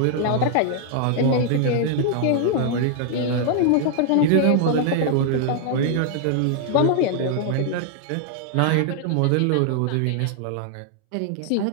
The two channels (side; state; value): both; different; correlation 0.00